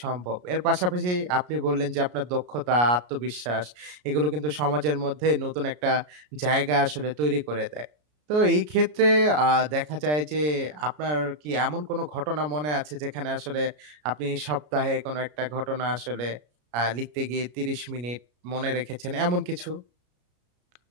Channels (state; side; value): late; left; 33 ms